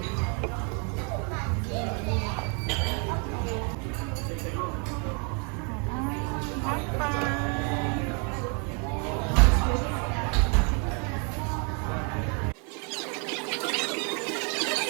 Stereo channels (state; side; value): quieter; left; 36.7 dB